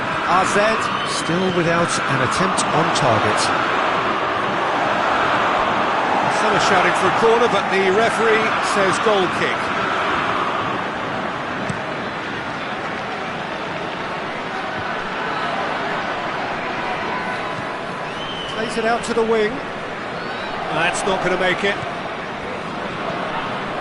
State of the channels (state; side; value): identical; both; correlation 1.00